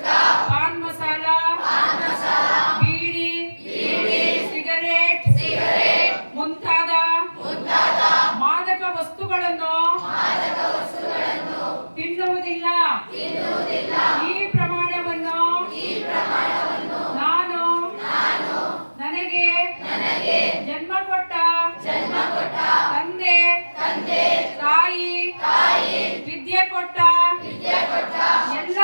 ಪಾನ್ ಮಸಾಲ ಬೀಡಿ ಸಿಗರೇಟ್ ಮುಂತಾದ ಮಾದಕ ವಸ್ತುಗಳನ್ನು ತಿನ್ನುವುದಿಲ್ಲ. ಈ ಪ್ರಮಾಣವನ್ನು ನಾನು ನನಗೆ ಜನ್ಮ ಕೊಟ್ಟ ತಂದೆ ತಾಯಿ ವಿದ್ಯೆ ಕೊಟ್ಟ ಎಲ್ಲ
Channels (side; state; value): both; inverted; correlation -1.00